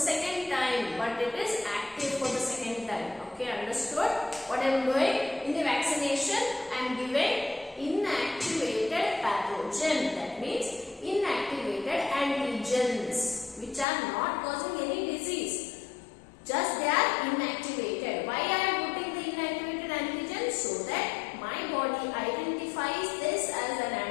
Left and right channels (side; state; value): right; drops out; at 13.9 s